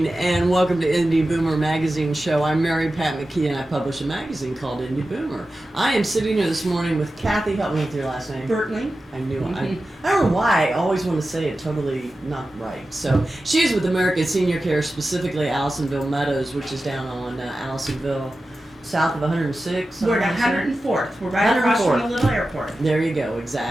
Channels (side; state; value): both; normal; correlation 0.93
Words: and welcome to Indy Boomer Magazine Show. I'm Mary Pat McKee and I publish a magazine called Indy Boomer. I am sitting here this morning with Cathy. Help me with your last name. Bertling. I knew it. I don't know why I always want to say it totally not right. So she's with American Senior Care, specifically Allisonville Meadows, which is down on Allisonville, south of 106. We're at 104th. We're right across from the little airport. There you go,